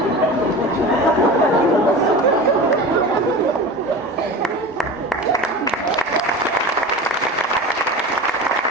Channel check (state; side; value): normal; both; correlation 0.32